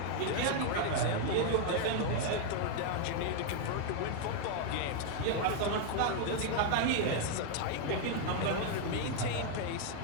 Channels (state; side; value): different; both; correlation 0.00